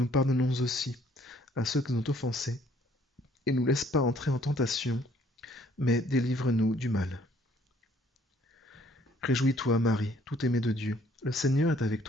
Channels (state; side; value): normal; both; correlation 0.62